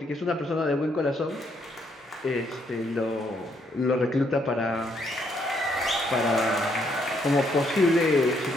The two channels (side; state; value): both; normal; correlation 0.72